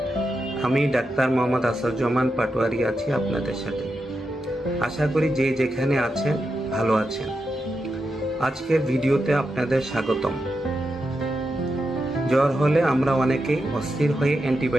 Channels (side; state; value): both; normal; correlation 0.87